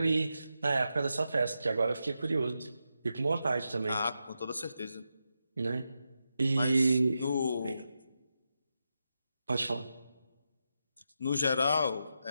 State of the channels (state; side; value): inverted; both; correlation -0.87